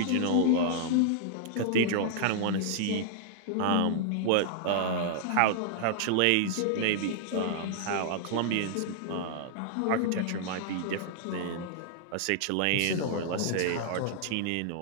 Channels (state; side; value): different; both; correlation -0.01